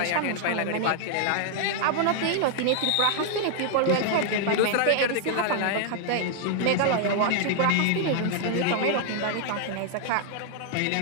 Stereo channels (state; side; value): different; both; correlation 0.00